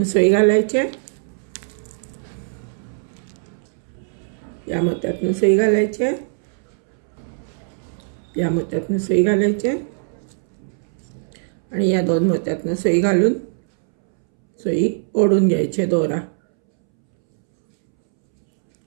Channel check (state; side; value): silent; left; 65 dB below the other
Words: सुई घालायची. या मोत्यातनं सुई घालायची. या मोत्यातनं सुई घालायची आणि या 2 मोत्यातनं सुई घालून सुई ओढून घ्यायची दोरा.